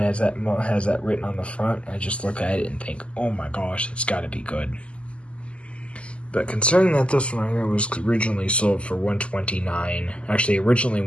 that written on the front, I just look at it and think, oh my gosh, it's got to be good. But considering that this one right here was originally sold for $129, actually originally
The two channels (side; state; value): right; late; 0.056 ms